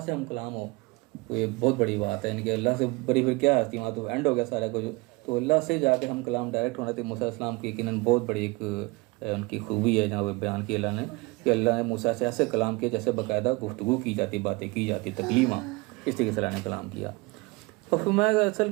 سے ہم کلام ہو تو یہ بہت بڑی بات ہے. یعنی کہ اللہ سے بڑی پھر کیا ہستی, وہاں تو اینڈ ہو گیا سارا کچھ. تو اللہ سے جا کے ہم کلام ڈائریکٹ ہونا تھے. موسیٰ علیہ السلام کی یقیناً بہت بڑی ایک ان کی خوبی ہے جہاں بیان کی اللہ نے کہ اللہ نے موسیٰ سے ایسے کلام کیا جیسے باقاعدہ گفتگو کی جاتی, باتیں کی جاتی, تکلیماں, اس طریقے سے اللہ نے کلام کیا. اور فرمایا اصل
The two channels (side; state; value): left; quieter; 24.8 dB